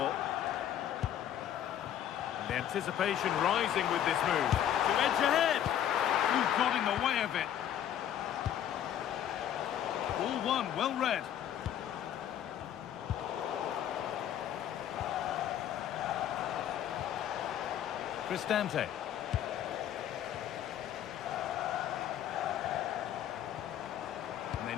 The anticipation rising with this move. To edge ahead. Who got in the way of it? Ball one, well read. Cristante. And they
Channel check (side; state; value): right; quieter; 10.5 dB